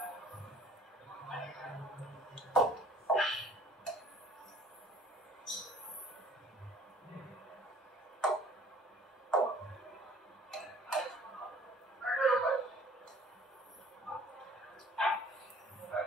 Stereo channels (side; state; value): both; normal; correlation 0.52